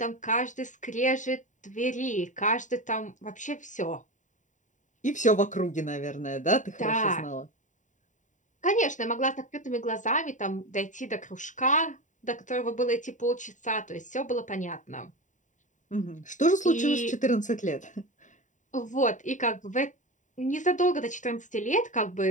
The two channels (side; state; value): right; late; 0.36 ms